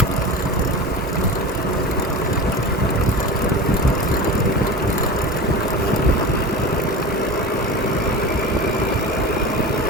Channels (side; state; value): both; normal; correlation 0.30